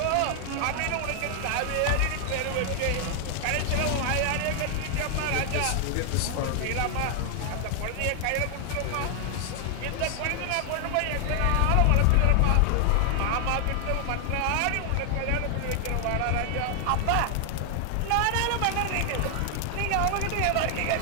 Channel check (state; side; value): different; both; correlation 0.00